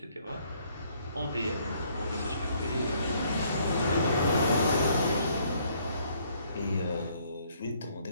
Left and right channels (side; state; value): both; inverted; correlation -0.65